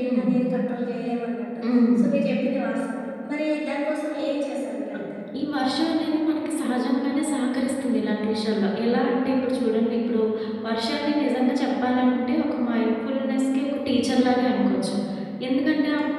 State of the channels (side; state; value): both; identical; correlation 1.00